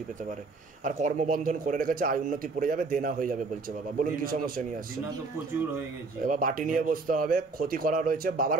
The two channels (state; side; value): quieter; left; 3.9 dB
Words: পেতে পারে। আর কর্মবন্ধন করে রেখেছে, আয় উন্নতি পড়ে যাবে, দেনা হয়ে যাবে বলছে বাবা। বলুন কি সমস্যা নিয়ে আসছে? প্রচুর হয়ে গেছে, এবার বাটি নিয়ে বসতে হবে। ক্ষতি করা রয়েছে বাবার